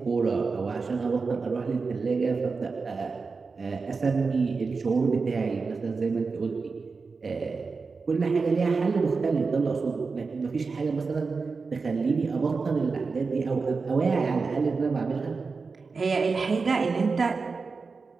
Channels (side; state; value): left; quieter; 4.5 dB